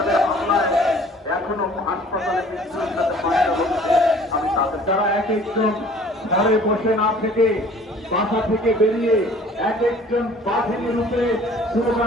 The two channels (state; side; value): normal; both; correlation 0.51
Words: হামলায় এখনো হাসপাতালে মৃত্যুর সাথে মারা হচ্ছে। আমি তাদের যারা এক একজন ঘরে বসে না থেকে বাসা থেকে বেরিয়ে এক একজন বাহিনী রূপে